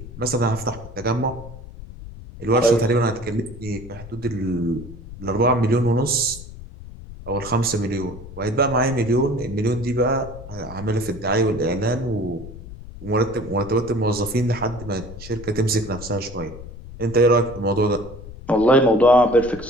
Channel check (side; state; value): left; noise; rumble, 14 dB below the sound